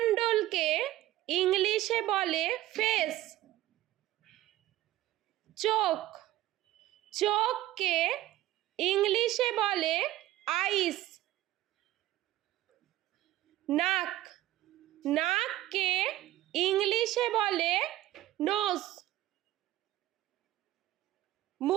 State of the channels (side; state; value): left; quieter; 15.2 dB